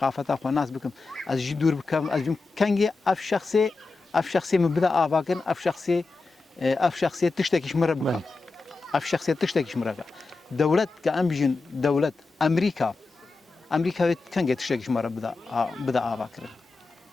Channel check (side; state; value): right; quieter; 3.8 dB